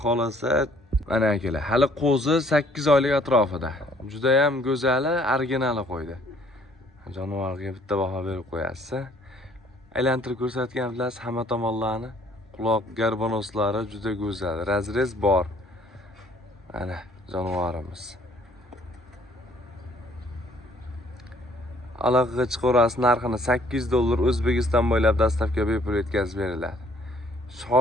xolasa, mana akalar, hali qo'zi 8 oylik atrofida. Juda ham go'zali, originali qo'ydi. Jonivorga bitta baho berib qo'yasiz. Aylantirib ko'rsatgan bilasiz hamma tomonlarni. Quloq garbonoslari juda go'zal, razrez bor. Mana jonivorimiz. Aloqaga chiqarasiz, narxini $8 O'zbekiston bo'ylab dastavka bepul yetkazib beriladi.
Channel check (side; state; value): both; normal; correlation 0.61